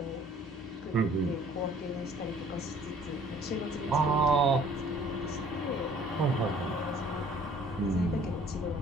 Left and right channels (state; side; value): normal; both; correlation 0.55